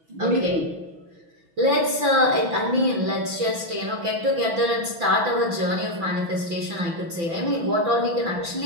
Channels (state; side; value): late; left; 6.0 ms